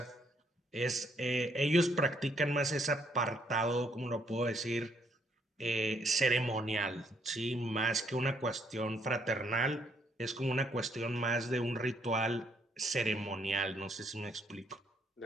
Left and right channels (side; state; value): both; normal; correlation 0.70